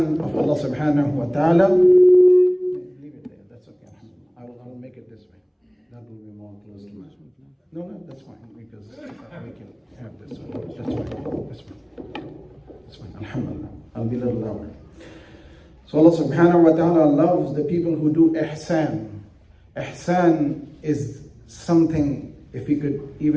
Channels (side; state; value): both; identical; correlation 1.00